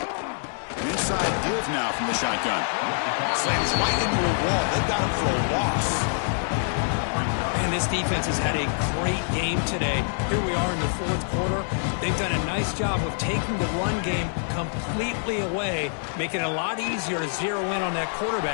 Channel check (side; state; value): right; silent; digital silence